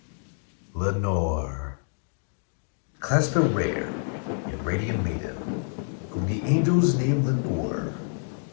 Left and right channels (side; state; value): right; silent; 60 dB below the other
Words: Lenore. Clasp a rare and radiant maiden, whom the angels name Lenore.